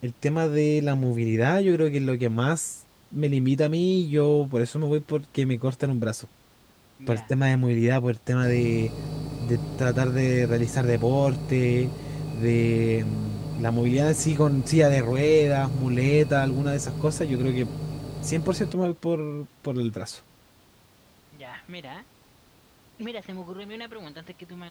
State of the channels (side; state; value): both; identical; correlation 1.00